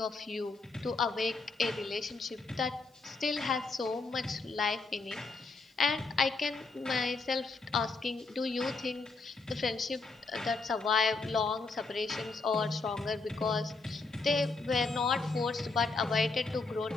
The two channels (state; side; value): quieter; right; 3.9 dB